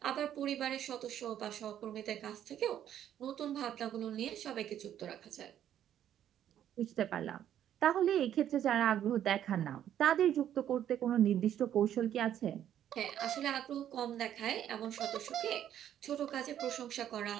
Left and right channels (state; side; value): quieter; left; 10.6 dB